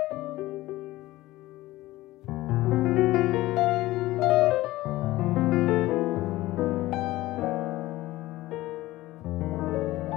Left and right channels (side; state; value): right; quieter; 17.5 dB